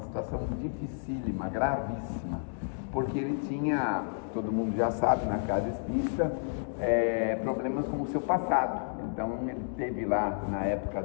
situação dificílima, gravíssima, porque ele tinha, todo mundo já sabe na casa espírita, problemas com o seu passado. Então ele teve lá na época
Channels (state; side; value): silent; right; digital silence